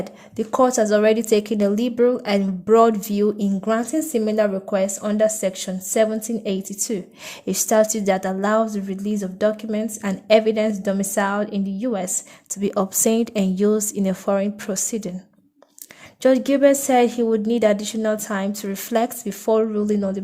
the court has already taken a liberal and broad view in granting similar requests under Section 1782, a statute that allows the release of documents and evidence domiciled in the U.S. to be obtained and used in a foreign proceeding. Judge Gilbert said he would need additional time to reflect before ruling on the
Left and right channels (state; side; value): identical; both; correlation 1.00